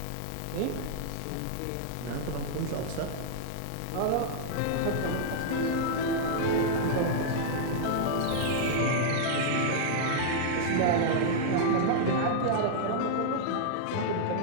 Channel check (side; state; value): both; different; correlation -0.01